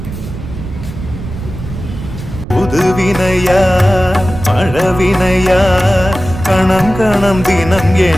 புதுவினையா பழவினையா கணம் கணம் தினம்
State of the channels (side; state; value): right; noise; rumble, 10 dB below the sound